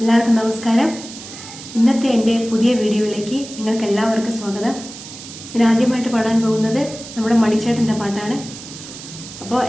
നമസ്കാരം. ഇന്നത്തെ എൻ്റെ പുതിയ വീഡിയോയിലേക്ക് നിങ്ങൾക്ക് എല്ലാവർക്കും സ്വാഗതം. ഞാൻ ആദ്യമായിട്ട് പാടാൻ പോകുന്നത് നമ്മുടെ മണിച്ചേട്ടൻ്റെ പാട്ടാണ്. അപ്പോൾ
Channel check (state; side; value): noise; right; hiss, 14 dB below the sound